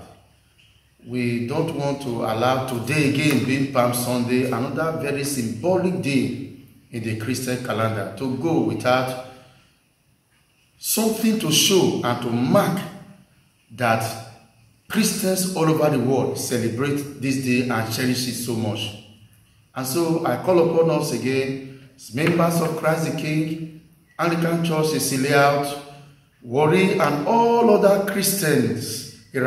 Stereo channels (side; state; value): both; identical; correlation 1.00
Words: We don't want to allow today again, being Palm Sunday, another very symbolic day in the Christian calendar, to go without something to show and to mark that Christians all over the world celebrate this day and cherish it so much. And so I call upon us again, as members of Christ the King, Anglican Church, Cecilia Out, Warri, and all other Christians